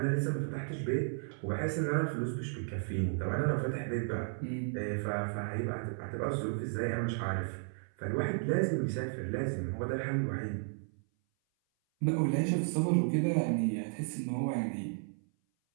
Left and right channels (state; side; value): silent; left; 55 dB below the other